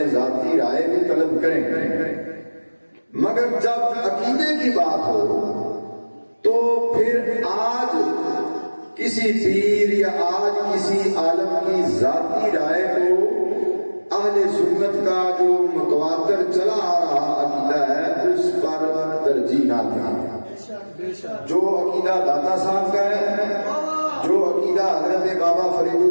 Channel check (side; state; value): both; inverted; correlation -1.00